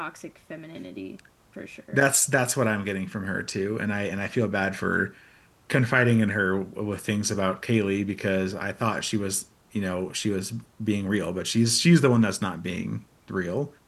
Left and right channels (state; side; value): identical; both; correlation 1.00